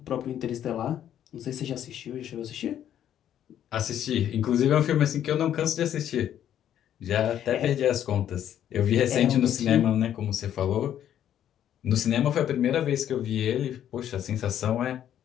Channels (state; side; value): quieter; right; 10.5 dB